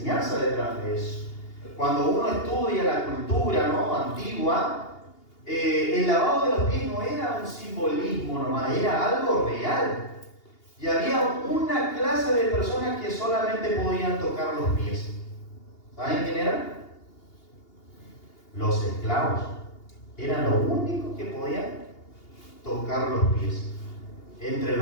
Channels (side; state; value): right; late; 2.8 ms